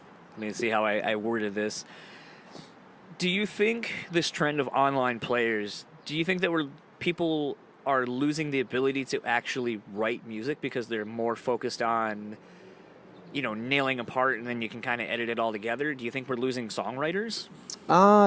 Let me see how I worded this. Do you think this trend of online players, do you think that people are losing the ability to actually write music because they're more focused on... nailing a part, and then you can kind of edit it all together? Do you think we're losing songwriters?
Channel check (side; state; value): both; identical; correlation 1.00